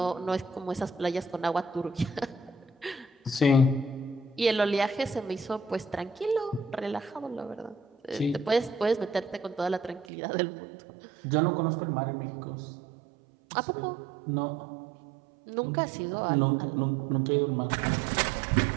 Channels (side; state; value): left; drops out; at 10.1 s